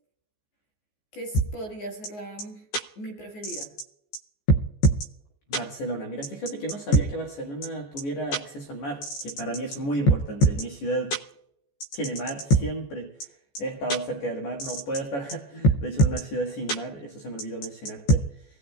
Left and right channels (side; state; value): right; late; 14 ms